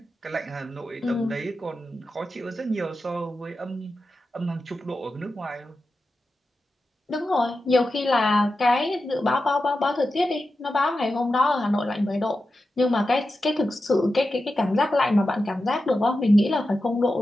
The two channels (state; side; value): normal; both; correlation 0.91